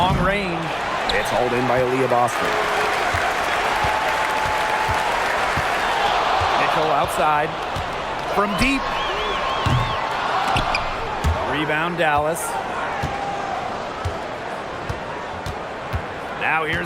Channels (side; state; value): both; identical; correlation 1.00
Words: range. It's hauled in by Aaliyah Boston. Outside from deep. Rebound Dallas. Now